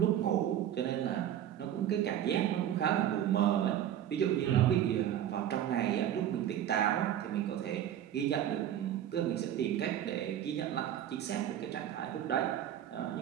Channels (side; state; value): left; quieter; 10.9 dB